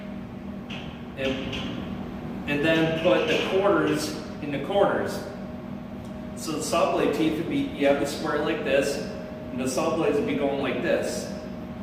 and then put the quarters in the corners. So the saw blade teeth would be, you have the square like this, and the saw blades would be going like this.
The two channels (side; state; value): both; identical; correlation 1.00